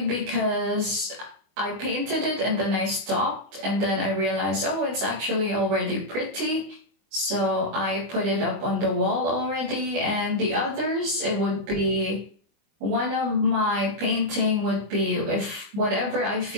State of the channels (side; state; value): left; late; 24 ms